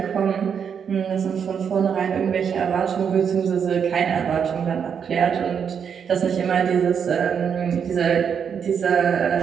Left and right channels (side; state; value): left; quieter; 7.3 dB